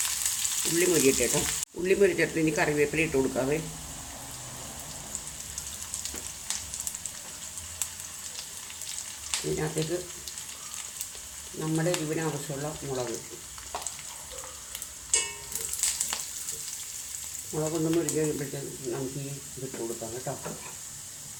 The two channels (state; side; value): identical; both; correlation 1.00